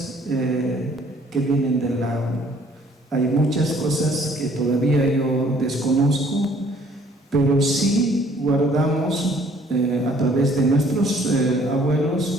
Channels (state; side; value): normal; both; correlation 0.59